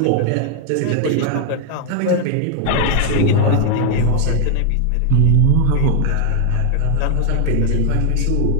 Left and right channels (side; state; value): both; different; correlation 0.00